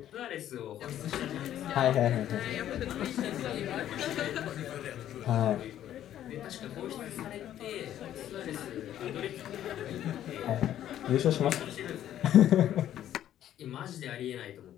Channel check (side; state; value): right; quieter; 11.5 dB